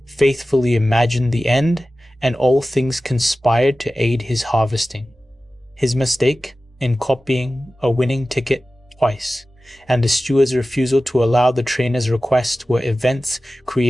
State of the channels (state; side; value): normal; both; correlation 0.95